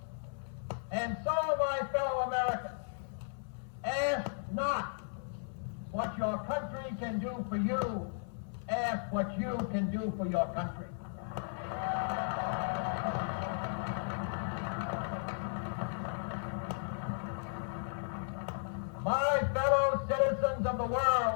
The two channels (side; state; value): right; silent; 54 dB below the other